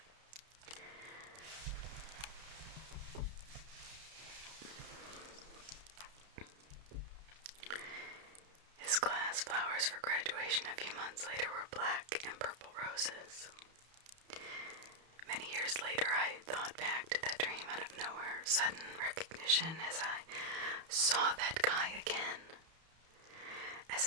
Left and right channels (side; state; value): left; late; 31 ms